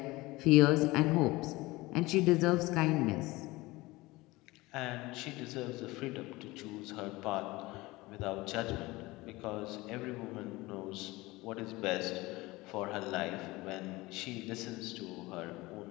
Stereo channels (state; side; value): quieter; right; 20.8 dB